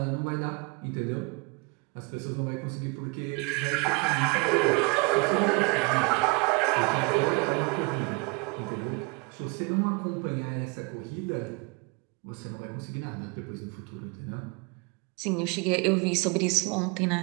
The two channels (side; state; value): left; quieter; 29.1 dB